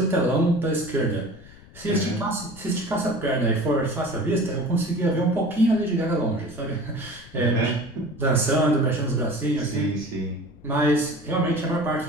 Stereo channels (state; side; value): noise; left; rumble, 21 dB below the sound